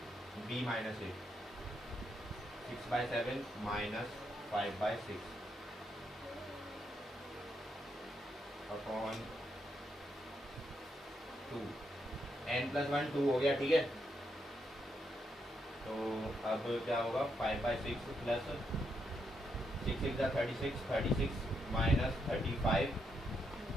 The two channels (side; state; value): both; normal; correlation 0.80